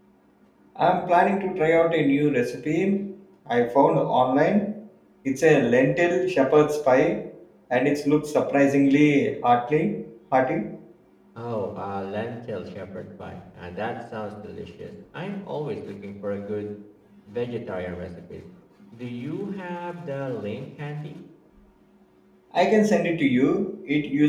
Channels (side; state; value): both; identical; correlation 1.00